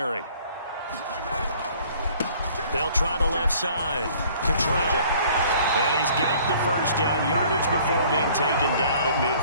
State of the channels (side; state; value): both; inverted; correlation -0.55